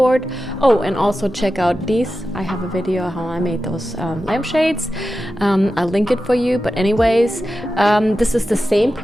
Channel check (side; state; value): both; normal; correlation 0.92